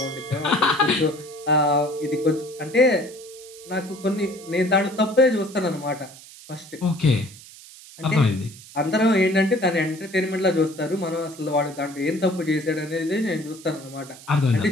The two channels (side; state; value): right; noise; hiss, 19 dB below the sound